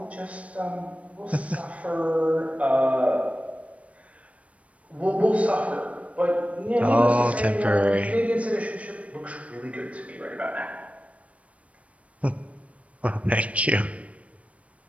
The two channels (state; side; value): late; left; 0.064 ms